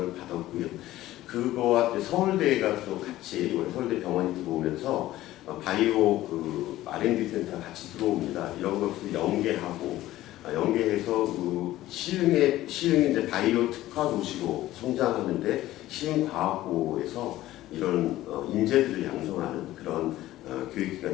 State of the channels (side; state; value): right; quieter; 15.3 dB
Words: 받았고요. 그거와 서울대가 또 같이 서울대 병원이 들어오면서 바이오 그 R&D 센터 같이 들어옵니다. 이런 것을 연계해서 그 시흥이 이제 바이오 특화 도시로 성장하는데 시흥과학고에서 이런 인재들을 양성하는 그런